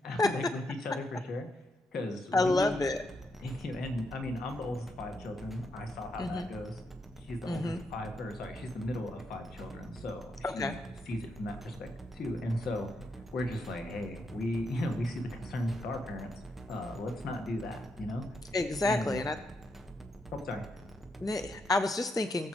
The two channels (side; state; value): both; normal; correlation 0.80